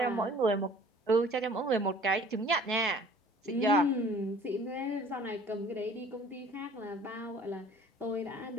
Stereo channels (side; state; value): both; normal; correlation 0.51